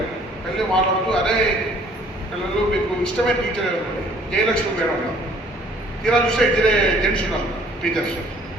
వెళ్ళి మాట్లాడుతూ అదే పిల్లలు మీకు ఇష్టమైన టీచర్ ఎవరు? జయలక్ష్మి మేడం ఉన్నారు. తీరా చూస్తే ఇద్దరే జెంట్స్ ఉన్నారు టీచర్స్.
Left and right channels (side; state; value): both; normal; correlation 0.57